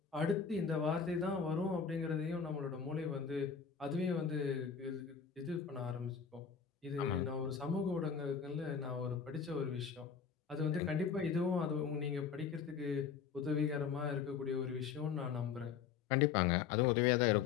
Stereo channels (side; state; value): right; quieter; 6.6 dB